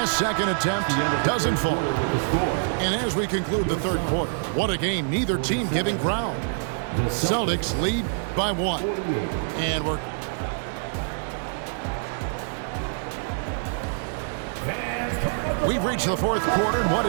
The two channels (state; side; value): silent; left; digital silence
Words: second attempt doesn't fall. And as we conclude the third quarter, what a game. Neither team giving ground. Celtics lead by 1. And we've reached the fourth quarter, and what